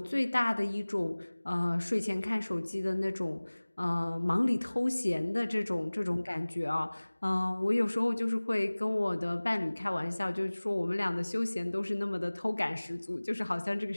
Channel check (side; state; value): both; inverted; correlation -1.00